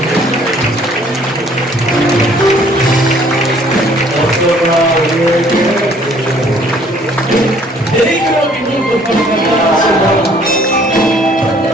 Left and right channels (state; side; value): normal; both; correlation 0.59